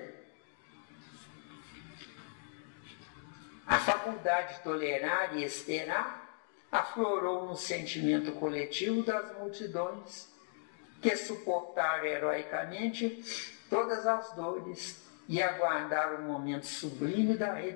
A faculdade de tolerar e esperar aflorou no sentimento coletivo das multidões que suportaram heroicamente todas as dores e aguardaram o momento sublime da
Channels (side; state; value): right; silent; digital silence